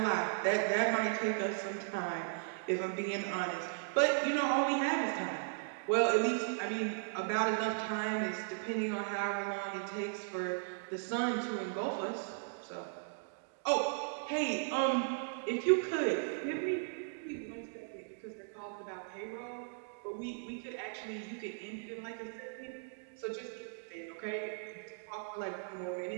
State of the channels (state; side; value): silent; left; digital silence